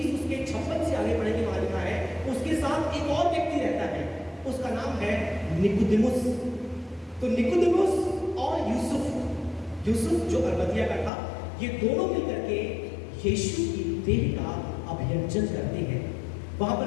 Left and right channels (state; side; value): drops out; right; at 11.1 s